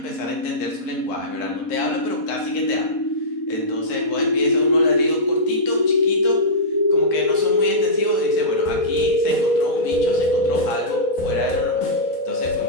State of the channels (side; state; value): right; late; 4.2 ms